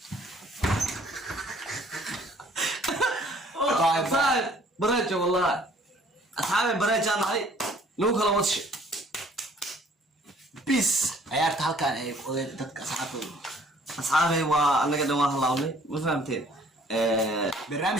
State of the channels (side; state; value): both; normal; correlation 0.57